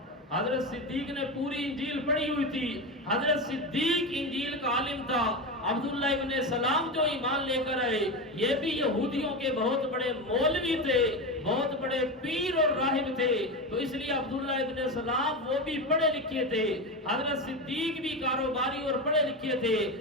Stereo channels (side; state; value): both; normal; correlation 0.19